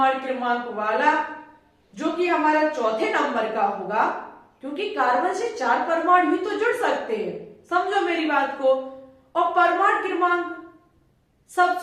क्रमांक वाला, जो कि हमारा चौथे नंबर का होगा, क्योंकि कार्बन से 4 परमाणु ही तो जुड़ सकते हैं, समझो मेरी बात को, और परमाणु क्रमांक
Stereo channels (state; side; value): identical; both; correlation 1.00